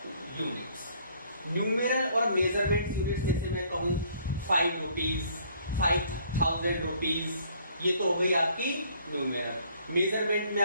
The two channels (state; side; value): inverted; both; correlation -0.61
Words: units. Numeral और मेजरमेंट यूनिट्स जैसे मैं कहूं 5 रुपीज, 5000 रुपीज, ये तो हो गई आपकी न्यूमेरल। मेजरमेंट में